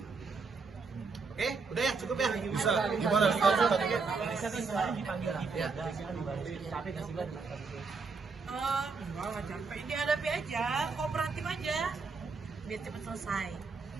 Oke, udah ya, cukup ya. Bisa, gimana status tadi? Bisa kan kemarin dipanggil di Ya. Polda, sih kan dibantu. Capek nggak sih, Bang? Enggak capek. Dihadapi aja, kooperatif aja. Biar cepet selesai.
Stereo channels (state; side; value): quieter; left; 4.6 dB